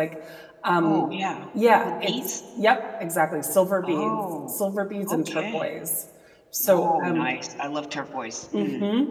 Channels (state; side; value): identical; both; correlation 1.00